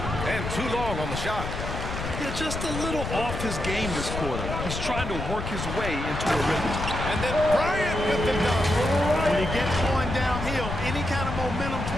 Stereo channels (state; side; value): noise; left; rumble, 5 dB below the sound